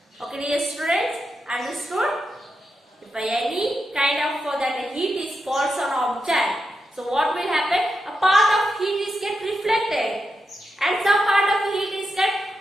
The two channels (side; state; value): both; normal; correlation 0.87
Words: Okay dear students, understood? If by any kind of that heat is falls on object, so what will happen? A part of heat is get reflected and some part of heat is get